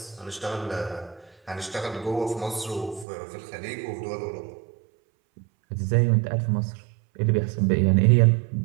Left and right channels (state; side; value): drops out; left; at 3.1 s